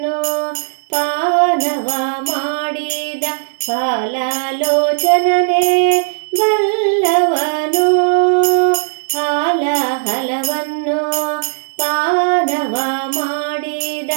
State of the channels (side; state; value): left; silent; 65 dB below the other